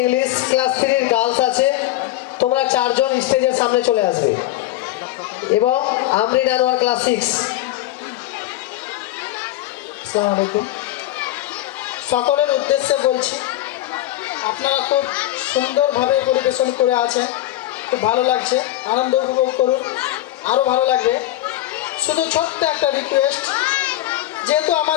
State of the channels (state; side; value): quieter; right; 15.1 dB